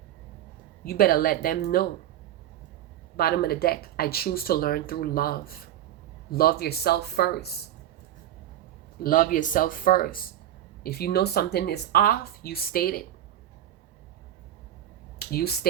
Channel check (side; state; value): left; quieter; 12.0 dB